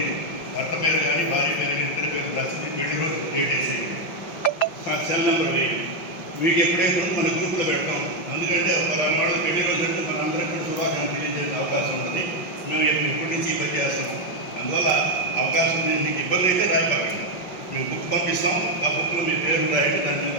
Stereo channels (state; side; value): late; right; 5.5 ms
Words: భర్త పేరు కానీ భార్య పేరు కానీ ఇద్దరి పేరు రాసి పెళ్లి రోజు డేట్ వేసి నాకు సెల్ నెంబర్ వేయండి. మీకు ఎప్పుడైతే మన గ్రూప్లో పెడతాం. ఎందుకంటే ఒక వాళ్ళు పెళ్లి రోజు అంటే మన అందరికీ కూడా శుభాకాంక్షలు తెలియజేసే అవకాశం ఉంటుంది. మేము ఇప్పటి నుంచి ఇబ్బంది చేస్తాం. అందువల్ల అవకాశం మీకు ఇబ్బంది అయితే రాయపాకండి. మేము బుక్ పంపిస్తాం, ఆ బుక్లో మీ పేరు రాయండి. దాని మీద